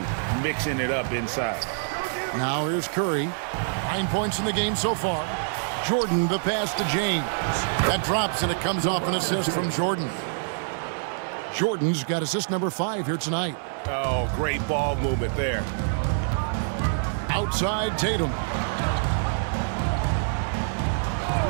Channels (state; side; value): silent; left; digital silence